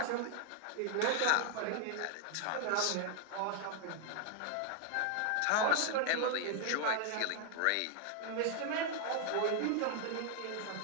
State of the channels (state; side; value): different; both; correlation 0.00